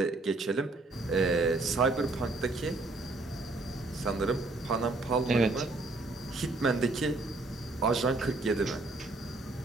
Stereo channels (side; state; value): left; quieter; 3.1 dB